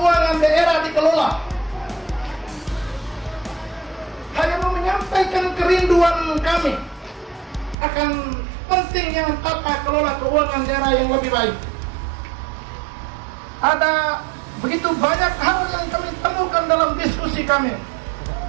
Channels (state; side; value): drops out; left; at 7.8 s